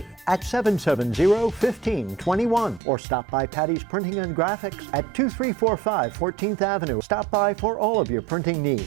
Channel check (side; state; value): left; drops out; at 2.8 s